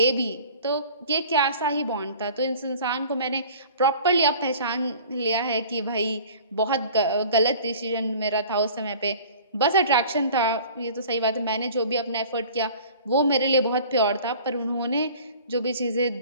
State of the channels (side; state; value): both; inverted; correlation -0.45